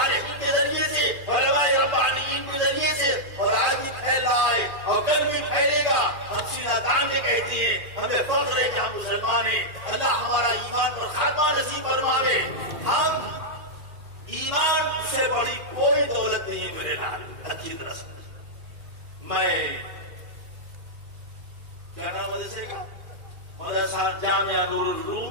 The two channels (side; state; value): left; late; 2.4 ms